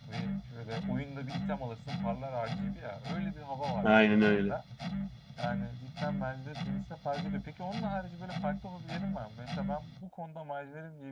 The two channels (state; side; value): identical; both; correlation 1.00